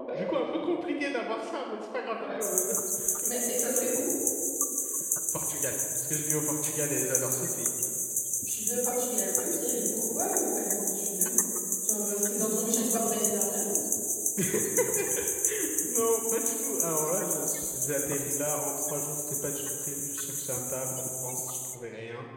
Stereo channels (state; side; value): identical; both; correlation 1.00